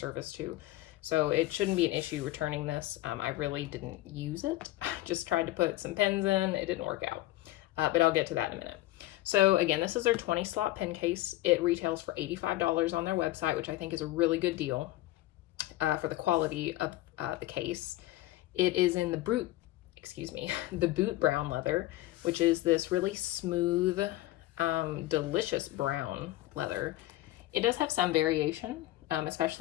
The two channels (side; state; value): right; quieter; 16.7 dB